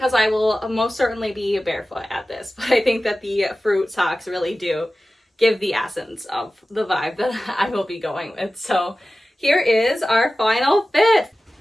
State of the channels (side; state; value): both; normal; correlation 0.95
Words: I will most certainly be barefoot at this. But I think that the fruit socks really do give the essence of the vibe that I will be going with. So here is our final fit.